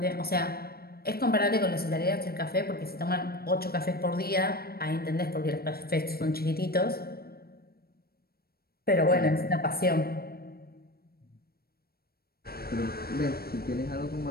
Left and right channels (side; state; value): right; late; 0.44 ms